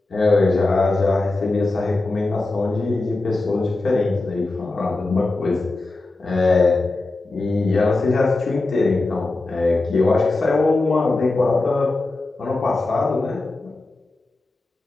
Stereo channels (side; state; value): right; quieter; 3.1 dB